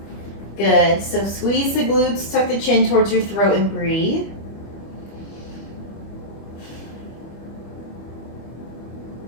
Good. So squeeze the glutes, tuck the chin towards your throat and breathe.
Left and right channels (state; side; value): late; right; 25 ms